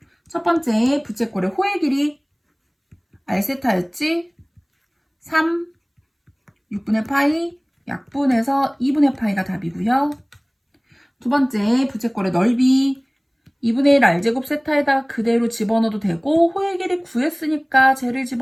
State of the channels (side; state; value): both; identical; correlation 1.00